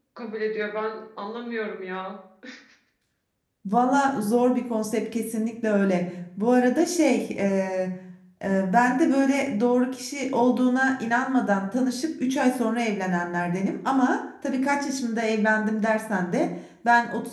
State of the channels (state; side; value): identical; both; correlation 1.00